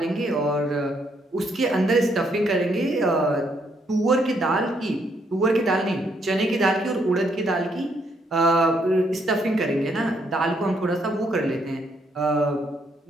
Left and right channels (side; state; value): both; normal; correlation 0.73